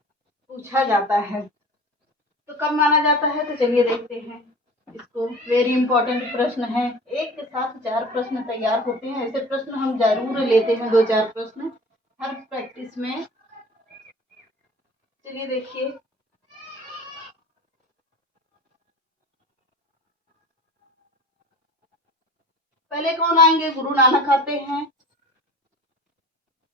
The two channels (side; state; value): both; normal; correlation 0.41